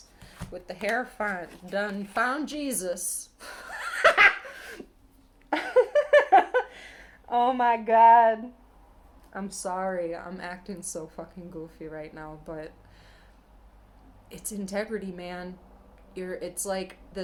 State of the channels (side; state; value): both; identical; correlation 1.00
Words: with the hair done found Jesus. Oh my God. I'm sorry. I'm acting so fucking goofy right now, but it's integrity, man. It's like